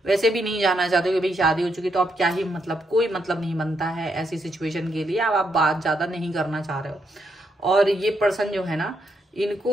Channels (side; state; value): both; normal; correlation 0.79